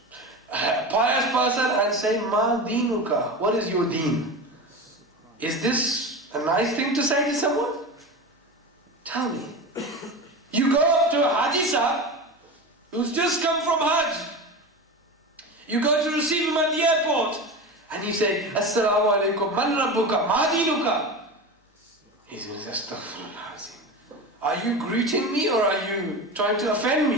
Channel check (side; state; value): both; normal; correlation 0.26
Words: pious person and say, Ma dinuka, what is your deen? Is this a nice thing to say to someone? Tell me. You go up to a Haji Sahib who's just come from Hajj. You go to receive him at the airport and you say, Assalamu alaikum, man rabbuka, ma dinuka. He's going to say, Astaghfirullah azim. Are you greeting me or are you trying to offend